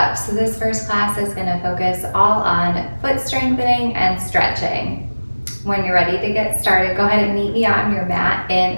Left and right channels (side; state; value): both; inverted; correlation -1.00